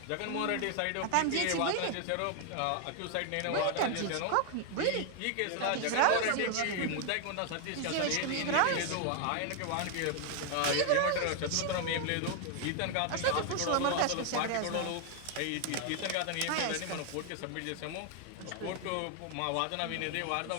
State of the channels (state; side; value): different; both; correlation 0.00